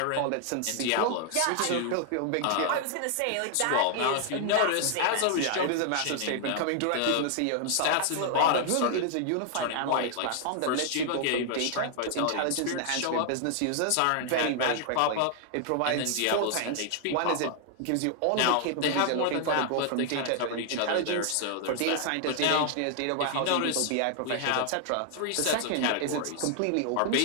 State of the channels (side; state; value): both; different; correlation 0.00